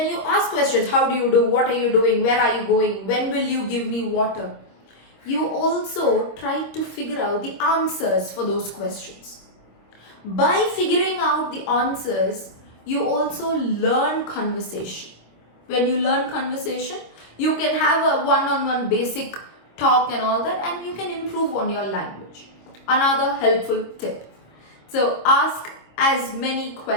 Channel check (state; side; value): late; right; 25 ms